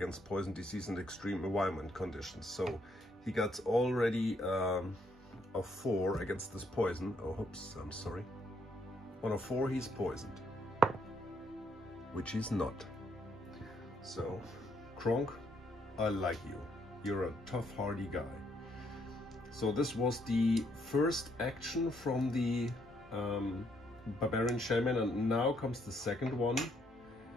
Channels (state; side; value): normal; both; correlation 0.72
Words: poison, disease and extreme environment conditions. So he got already a 4 against this poison. Oh, oops, I'm sorry. On a 4 he's poisoned, which he's not. So Kronk, I like you. You're a tough, hardy guy. So this was the first action from the Barbarian Shaman, and now comes the second one,